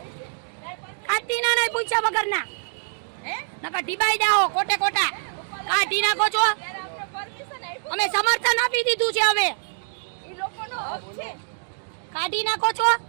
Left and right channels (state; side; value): silent; left; digital silence